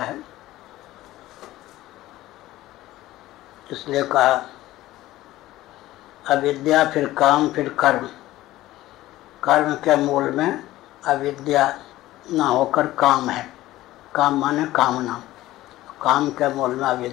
इसलिए कहा अविद्या, फिर काम, फिर कर्म। कर्म के मूल में अविद्या न होकर काम है। काम माने कामना। काम के मूल में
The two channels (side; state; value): right; quieter; 16.1 dB